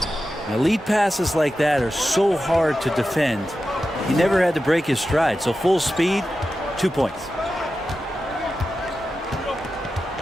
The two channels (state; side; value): normal; both; correlation 0.92